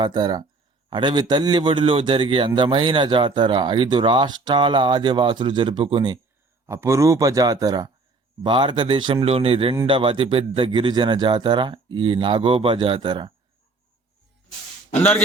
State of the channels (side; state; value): left; quieter; 3.6 dB